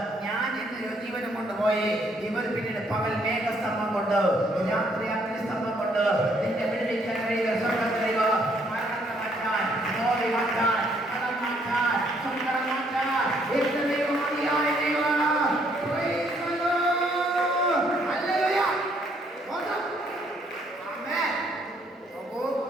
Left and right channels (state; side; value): normal; both; correlation 0.68